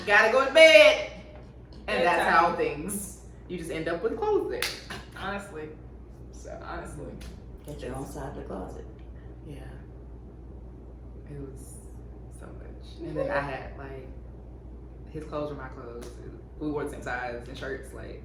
Gotta go to bed. And that's Bedtime. how things. You just end up with clothes there. Honestly. So Honestly. Get your own side of the closet. yeah, it was so much. And then I had like his clothes were my clothes. We wore the same size and shirts. Like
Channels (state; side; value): identical; both; correlation 1.00